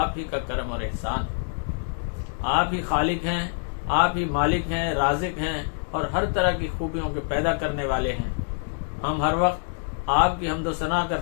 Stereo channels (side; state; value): right; silent; digital silence